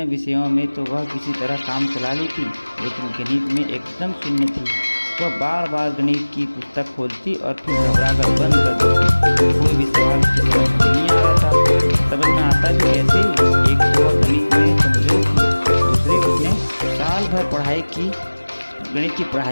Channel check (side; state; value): both; inverted; correlation -1.00